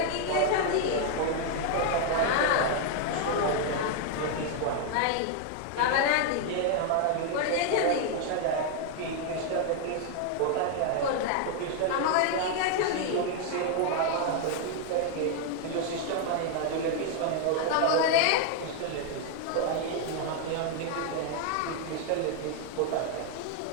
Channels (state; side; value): different; both; correlation 0.00